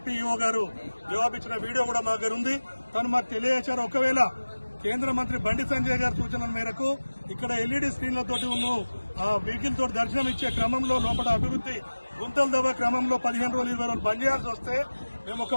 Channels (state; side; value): inverted; both; correlation -1.00